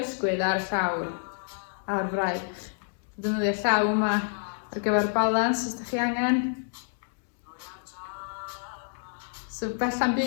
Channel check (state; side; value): silent; right; digital silence